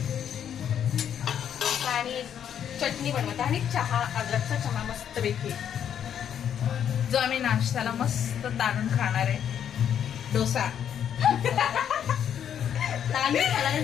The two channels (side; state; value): right; quieter; 9.1 dB